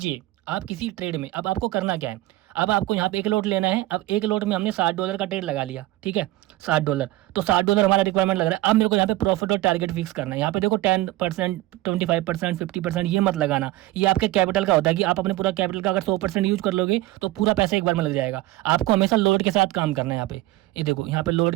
आप किसी ट्रेड में, अब आपको करना क्या है, अब आपको यहाँ पे एक लोट लेना है। अब एक लोट में हमने $60 का ट्रेड लगा लिया, ठीक है, $60। तो $60 हमारा रिक्वायरमेंट लग रहा है। अब मेरे को यहाँ पे प्रॉफिट और टारगेट फिक्स करना है। यहाँ पे देखो 10%, 25%, 50% ये मत लगाना। ये आपके कैपिटल का होता है कि आप अपने पूरा कैपिटल का अगर 100% यूज कर लोगे तो पूरा पैसा एक बार में लग जाएगा। आपको हमेशा लोड के साथ काम करना है। यहाँ पे ये देखो, यहाँ पे लोड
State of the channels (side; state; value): left; quieter; 17.3 dB